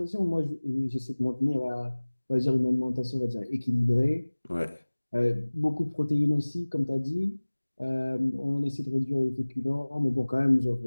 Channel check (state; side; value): inverted; both; correlation -1.00